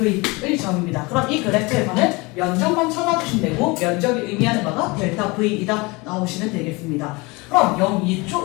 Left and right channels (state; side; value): quieter; right; 25.5 dB